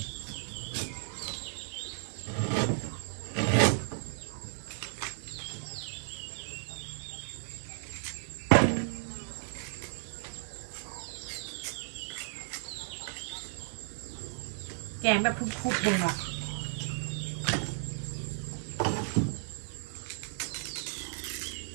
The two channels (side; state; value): left; silent; digital silence